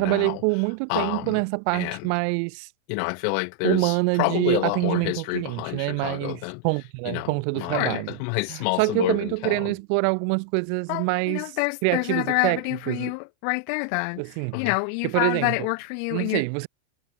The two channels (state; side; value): different; both; correlation 0.00